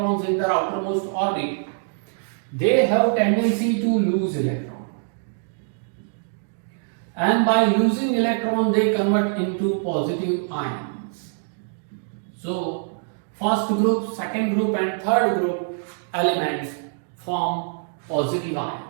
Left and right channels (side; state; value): left; silent; digital silence